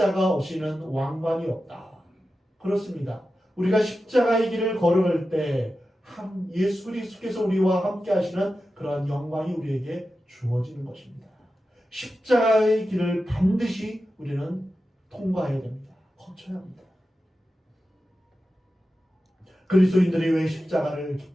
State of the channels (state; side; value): normal; both; correlation 0.92